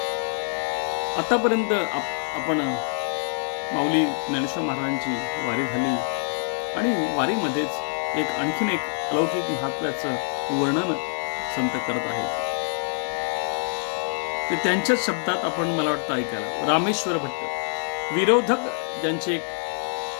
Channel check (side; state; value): right; silent; digital silence